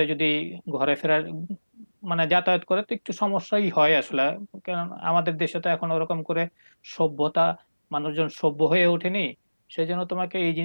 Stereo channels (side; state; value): both; inverted; correlation -1.00